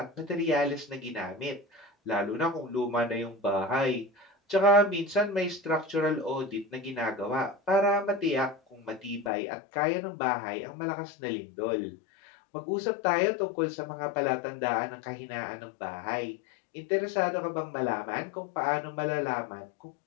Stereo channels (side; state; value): right; drops out; at 9.3 s